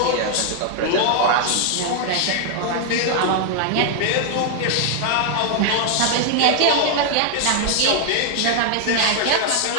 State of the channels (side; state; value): both; different; correlation 0.00